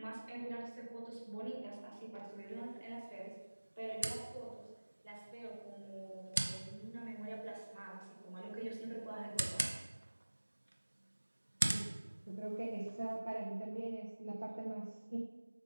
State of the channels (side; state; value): both; inverted; correlation -1.00